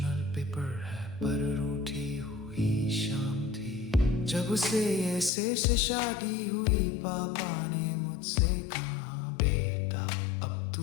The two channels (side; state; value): right; drops out; at 5.3 s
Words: पेपर है, पर रूठी हुई शाम थी जब उसे ऐसे से शादी हुई। पापा ने मुझसे कहा